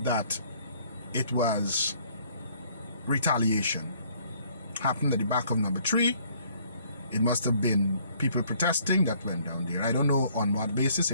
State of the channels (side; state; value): both; inverted; correlation -0.62